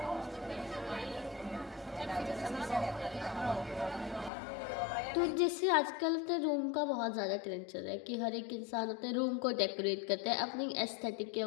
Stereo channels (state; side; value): drops out; right; at 4.3 s